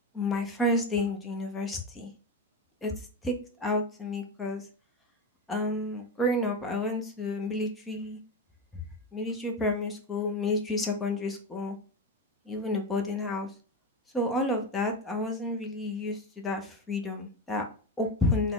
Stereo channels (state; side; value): normal; both; correlation 0.17